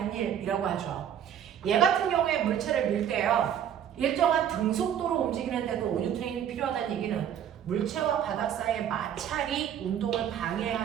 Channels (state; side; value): quieter; left; 9.5 dB